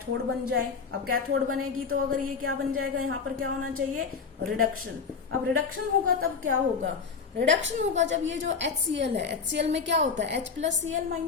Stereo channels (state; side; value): quieter; right; 5.5 dB